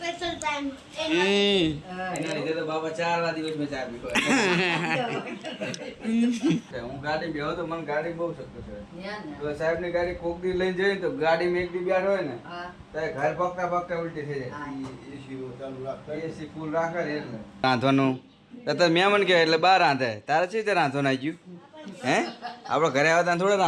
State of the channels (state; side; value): identical; both; correlation 1.00